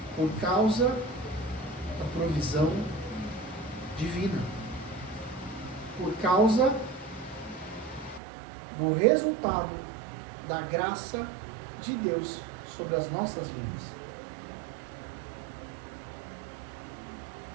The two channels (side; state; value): left; drops out; at 8.2 s